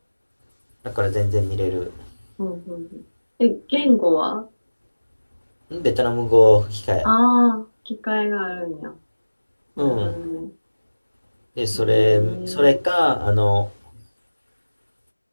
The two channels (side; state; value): both; inverted; correlation -1.00